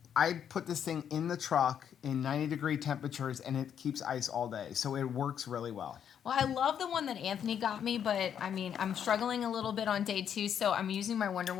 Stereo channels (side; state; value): right; quieter; 8.7 dB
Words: I put this thing in the truck in 90-degree temperatures, and it keeps ice all day. So it works really well. Well, I love the one that Anthony got me, but I mean, I'm struggling a little bit on day 2, so I'm using my Wonder